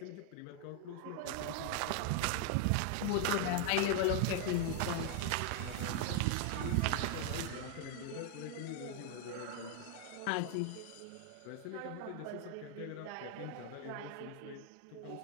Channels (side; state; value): both; different; correlation 0.00